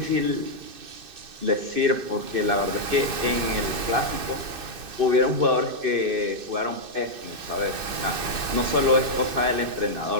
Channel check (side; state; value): left; late; 2.6 ms